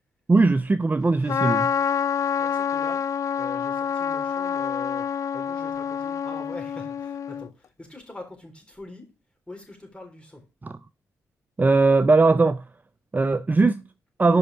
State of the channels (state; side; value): normal; both; correlation 0.79